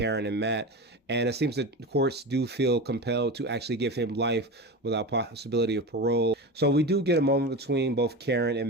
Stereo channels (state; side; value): normal; both; correlation 0.25